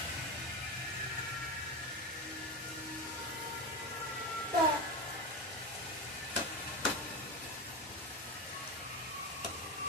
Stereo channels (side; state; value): both; normal; correlation 0.20